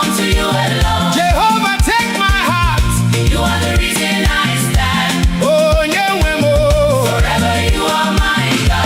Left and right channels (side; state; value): both; identical; correlation 1.00